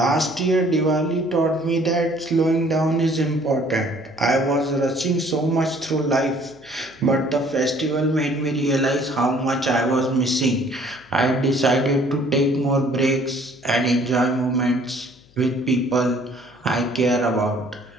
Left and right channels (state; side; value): noise; left; hum, 29 dB below the sound